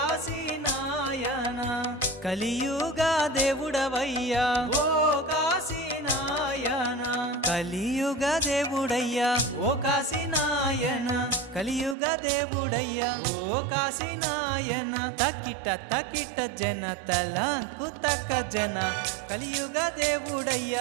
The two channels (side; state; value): left; drops out; at 12.0 s